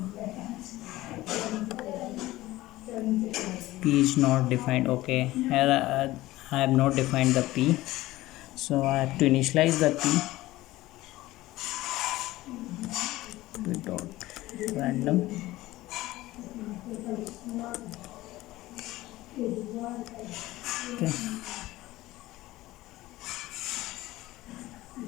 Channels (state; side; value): quieter; right; 17.4 dB